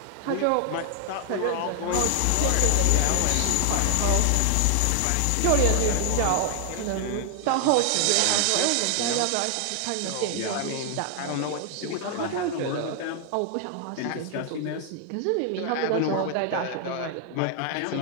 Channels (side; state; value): both; different; correlation 0.00